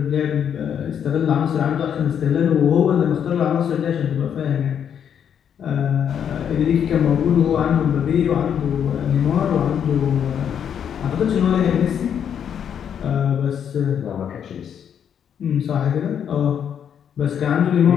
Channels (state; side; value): quieter; right; 8.4 dB